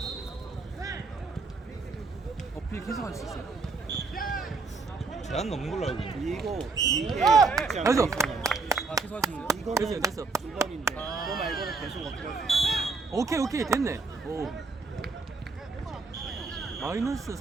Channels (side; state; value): left; quieter; 4.0 dB